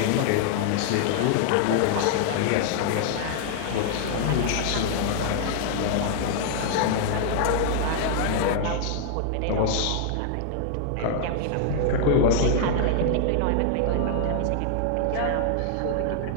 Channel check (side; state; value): both; different; correlation -0.01